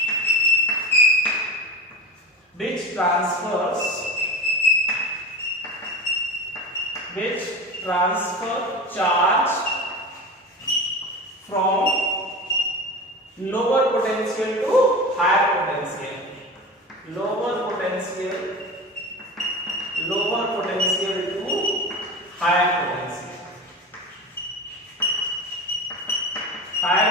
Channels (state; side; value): normal; both; correlation 0.29